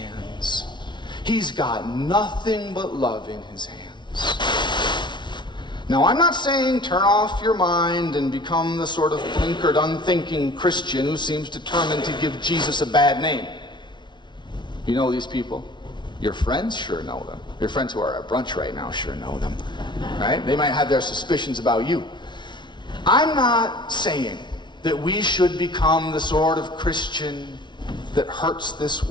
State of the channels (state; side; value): late; right; 0.22 ms